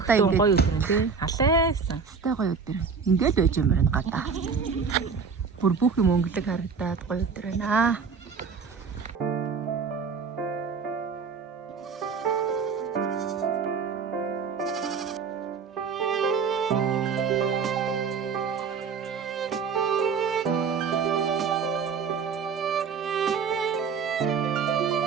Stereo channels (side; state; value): left; quieter; 5.7 dB